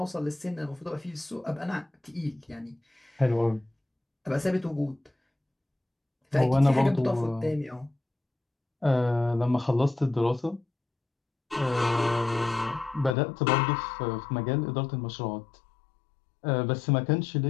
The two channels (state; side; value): drops out; right; at 13.2 s